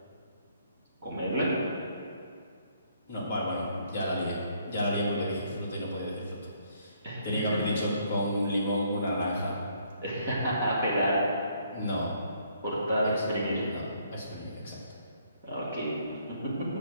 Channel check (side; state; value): both; inverted; correlation -0.67